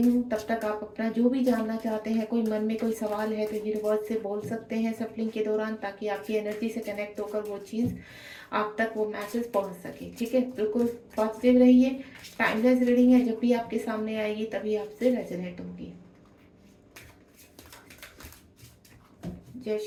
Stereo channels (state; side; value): identical; both; correlation 1.00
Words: तब तक आप अपना जो भी जानना चाहते हैं, कोई मन में कोई सवाल है तो यूनिवर्स से बोल सकते हैं सप्लिंग के दौरान, ताकि आपकी एनर्जी से कनेक्ट होकर वो चीज़ आप तक वो मैसेज पहुँच सके। ठीक है, बिल्कुल पॉजिटिव रहिए। टाइमलेस रीडिंग है, जब भी आपके सामने आएगी तभी आपसे रेजोनेट होगी। जय